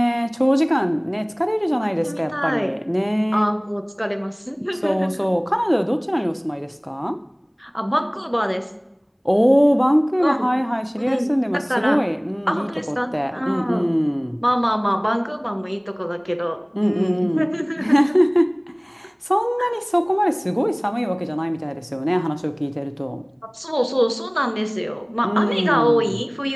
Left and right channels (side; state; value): both; identical; correlation 1.00